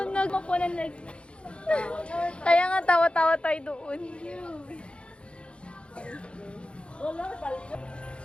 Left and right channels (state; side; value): late; right; 0.057 ms